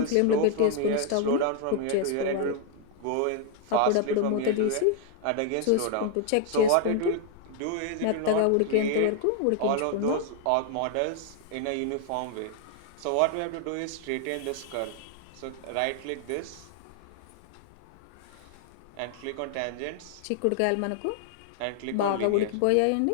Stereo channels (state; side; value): different; both; correlation 0.00